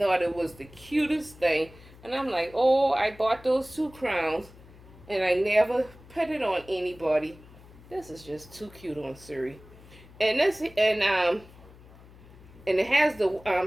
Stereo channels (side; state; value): left; noise; hum, 22 dB below the sound